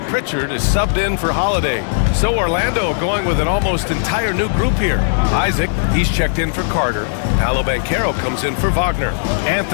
Pritchard is subbed in for Holiday. So Orlando going with an almost entire new group here. Isaac, he's checked in for Carter. Paolo Banchero comes in for Wagner.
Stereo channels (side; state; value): right; silent; 68 dB below the other